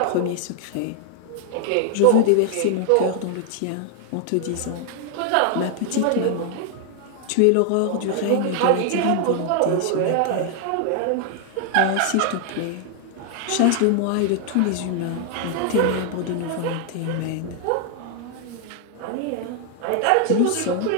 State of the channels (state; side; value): different; both; correlation 0.00